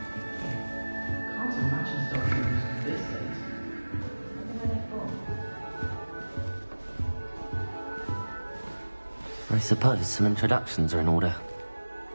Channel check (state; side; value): inverted; both; correlation -1.00